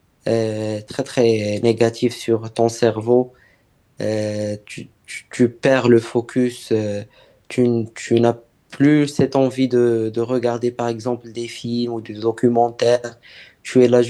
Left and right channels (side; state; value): both; identical; correlation 1.00